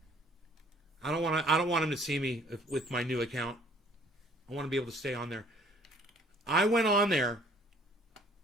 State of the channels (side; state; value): both; normal; correlation 0.57